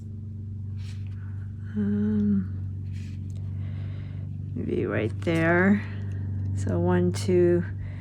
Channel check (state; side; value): identical; both; correlation 1.00